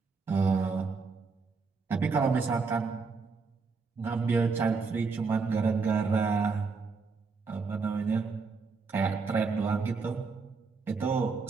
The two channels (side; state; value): left; quieter; 4.7 dB